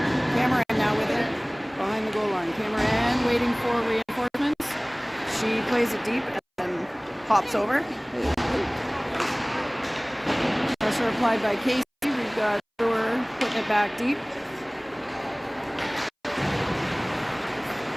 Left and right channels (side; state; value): both; identical; correlation 1.00